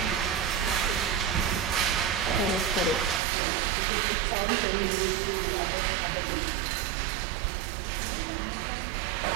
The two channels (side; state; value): left; drops out; at 3.2 s